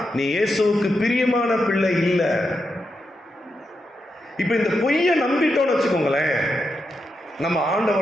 நீ இயேசுவுக்கு பிரியமான பிள்ளை இல்ல. இப்ப இந்த பொய்யை நம்பிட்டோம்னு வச்சுக்கோங்களேன், நம்ம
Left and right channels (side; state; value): both; normal; correlation 0.85